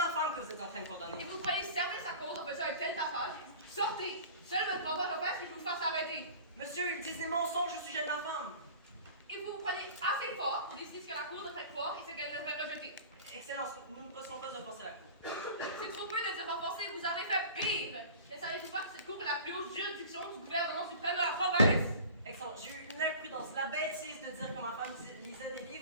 femme que vous êtes en train de Et condamner. vous croyez servir sa cause en faisant un tel tapage? Sortez! Seul votre compteur empêche que je vous fasse arrêter. Monsieur, il disent des mensonges au sujet de ma femme. Et vous vous prenez assez fort pour décider ce que la cour devrait croire et ce qu'elle devrait rejeter. Excellence, nous ne possédons pas offenser la cour. C'est trop peu de dire renforcer, vous avez fait pire! Ne savez-vous pas que cette cour est la plus haute juridiction du gouvernement suprême de la province? Excellence, j'ai eu l'imprudence, la bêtise de dire que ma femme lisait des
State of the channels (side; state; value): both; inverted; correlation -0.40